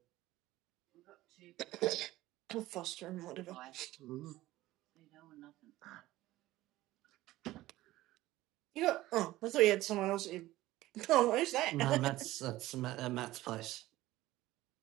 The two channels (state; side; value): quieter; left; 16.7 dB